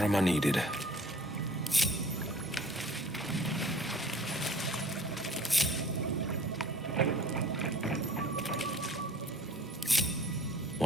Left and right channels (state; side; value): normal; both; correlation 0.49